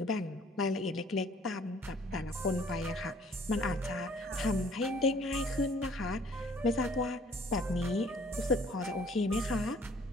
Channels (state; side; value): normal; both; correlation 0.57